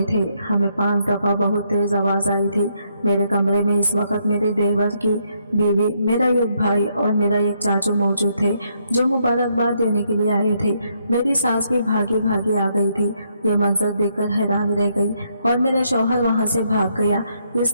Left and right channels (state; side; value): inverted; both; correlation -0.74